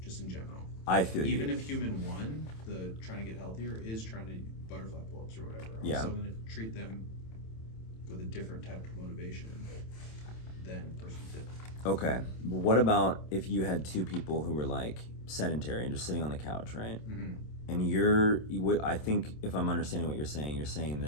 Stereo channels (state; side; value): late; right; 27 ms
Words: just in general. I feel Even you. if human one, the trying to get healthier, is trying to butterfly pull-ups or whatever, I'm Yeah. still going to treat them with a different type of motivation than person two. Okay, but what about if you had two people who were like sedentary and just sitting on the couch, right? Mm-hmm. And I think if I'm understanding what you're saying